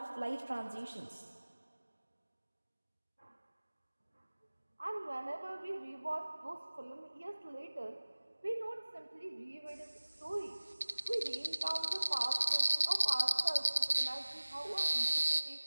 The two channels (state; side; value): inverted; both; correlation -1.00